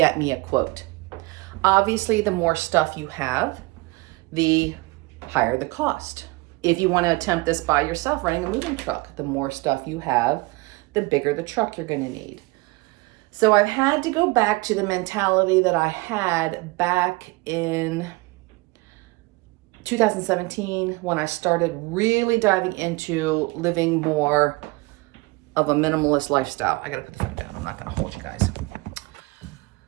me a quote. Obviously, the more stuff you have, the higher the cost. If you want to attempt this by yourself, running a moving truck, the more stuff you have, the bigger the truck you're going to need. So I've had to go back to the mentality that I had back in 2017 when I started really diving into living more of a minimalist lifestyle. I got to put the phone down. I'm not going to hold you guys.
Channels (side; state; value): left; quieter; 24.0 dB